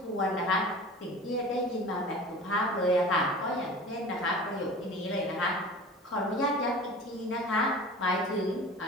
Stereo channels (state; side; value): normal; both; correlation 0.38